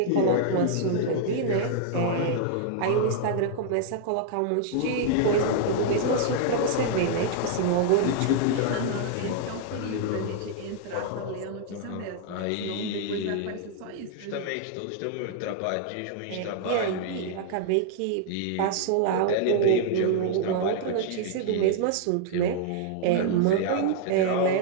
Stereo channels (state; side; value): different; both; correlation -0.01